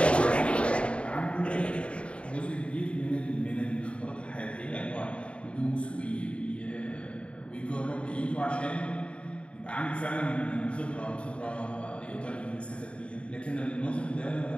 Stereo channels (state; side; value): late; right; 0.059 ms